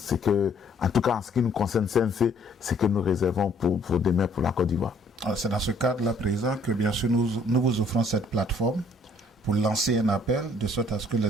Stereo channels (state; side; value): normal; both; correlation 0.62